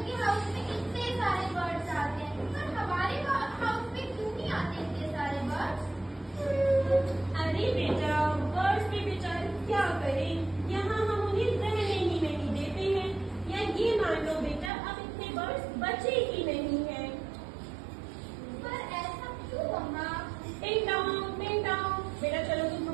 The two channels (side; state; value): left; drops out; at 14.7 s